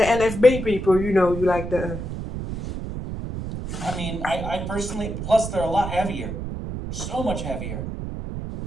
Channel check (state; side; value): noise; right; rumble, 6 dB below the sound